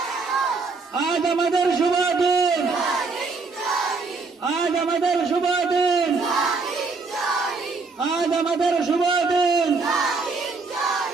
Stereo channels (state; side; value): quieter; left; 4.2 dB